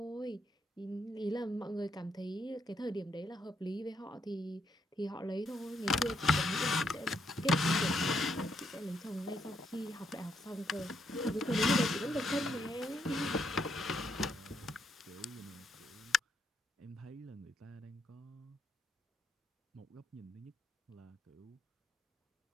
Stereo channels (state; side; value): normal; both; correlation 0.76